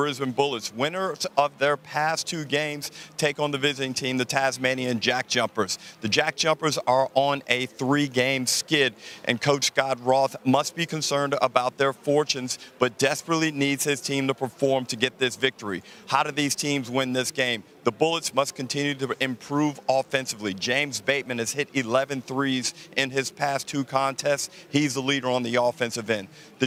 Bullets. Winners of their past 2 games take on the visiting team, the Tasmanian Jack Jumpers. The Jack Jumpers are on a 3-game skid, and Coach Scott Roth must be concerned about their fortunes, but desperately needs his team to perform to get this victory. How do these teams win this game? The Bullets must continue to improve offensively. James Bateman has hit 11 threes in his past 2 contests. He's the leader on the offensive end. The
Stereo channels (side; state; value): both; identical; correlation 1.00